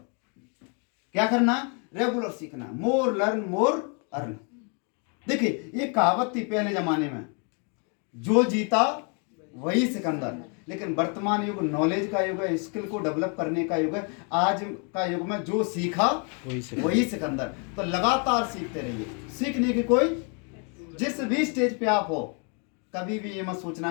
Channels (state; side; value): quieter; right; 37.5 dB